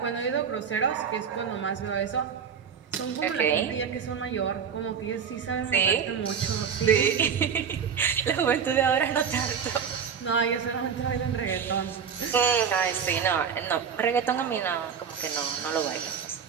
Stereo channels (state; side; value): quieter; left; 7.1 dB